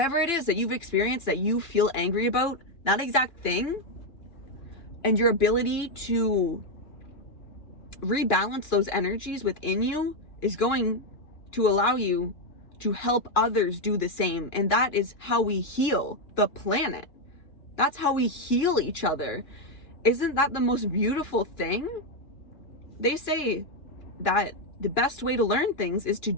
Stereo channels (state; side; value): late; right; 2.9 ms